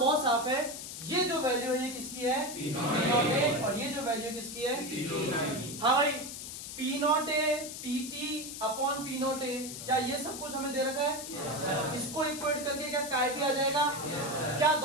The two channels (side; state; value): left; noise; hiss, 9 dB below the sound